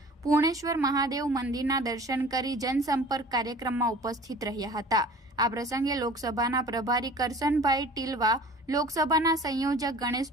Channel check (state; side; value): normal; both; correlation 0.44